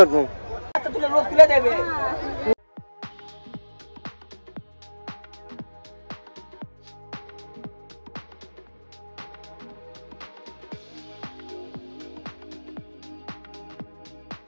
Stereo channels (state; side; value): inverted; both; correlation -1.00